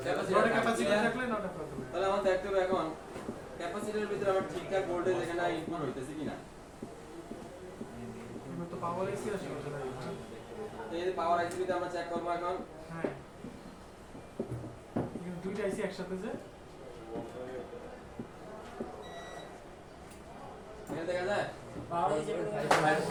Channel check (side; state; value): both; identical; correlation 1.00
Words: ক্যাপাসিটর থাকলে 9টা কত হবে তাহলে আমার দেখতে হবে এখন ক্যাপাসিটরের ভিতরে আমার ঠিকঠাক ভোল্টেজ এখানে ইনপুট হইতেছে কিনা এগুলো তো পাওয়ার এসি আছে এই যে পাওয়ার আইসি তে আমরা চেক করব এখন হ্যাঁ এগুলো দুইটা আইসি একসাথে যে এখানে দেখা যায় পাওয়ার আইসি